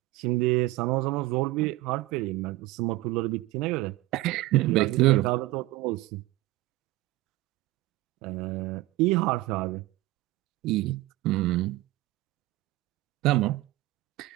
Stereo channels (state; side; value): quieter; left; 18.1 dB